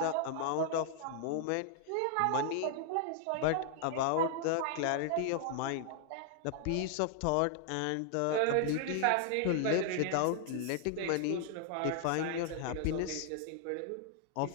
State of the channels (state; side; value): different; both; correlation 0.00